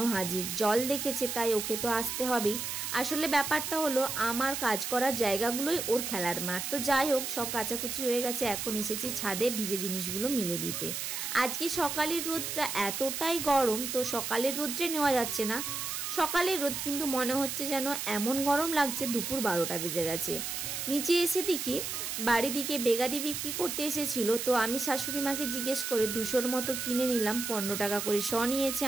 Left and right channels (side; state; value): right; noise; hiss, 4 dB below the sound